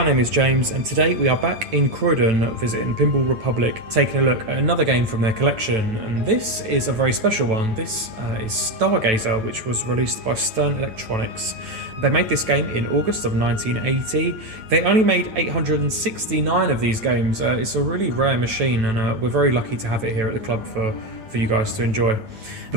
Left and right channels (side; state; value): left; late; 9.1 ms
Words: name is James, and today we are back in Croydon visiting Pinball Republic, taking a look at another game from their collection. And this is a very special one. This is Stargazer, which was released by Stern Electronics. They made this game in August of 1980. They only made 869 of these games. It's a really rare machine, and we're very lucky to have it here at the club for you guys to enjoy. The